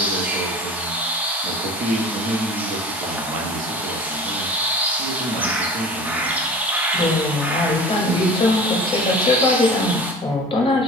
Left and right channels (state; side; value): normal; both; correlation 0.39